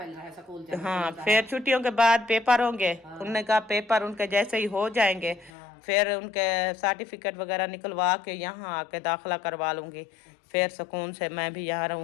रहा है स्कूल से। हाँ फिर छुट्टियों के बाद पेपर होंगे। उनने कहा पेपर उनके जैसे ही हो जाएंगे फिर उनके सर्टिफिकेट वगैरह निकलवा के यहाँ आके दाखिला करवा लूंगी। फिर सुकून से मैं भी यहाँ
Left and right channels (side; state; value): right; drops out; at 5.5 s